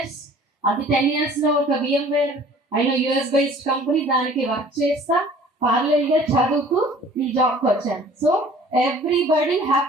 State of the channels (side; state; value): both; normal; correlation 0.50